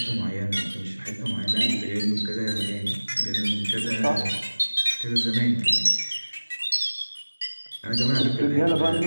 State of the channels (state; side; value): inverted; both; correlation -1.00